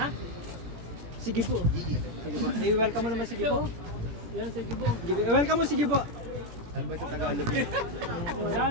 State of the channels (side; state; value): left; late; 17 ms